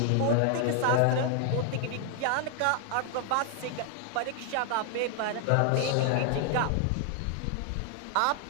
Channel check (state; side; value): different; both; correlation 0.00